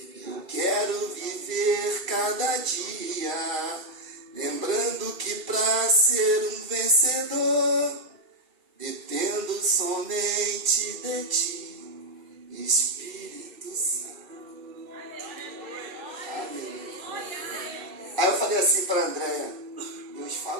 Eu quero viver cada dia, lembrando que para ser um vencedor, dependo somente de ti, Espírito Santo. Aí eu falei assim para a Andréia, Deus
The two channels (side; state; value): left; late; 2.4 ms